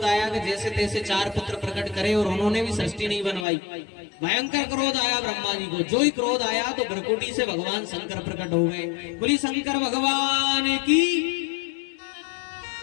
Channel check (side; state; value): right; drops out; at 3.5 s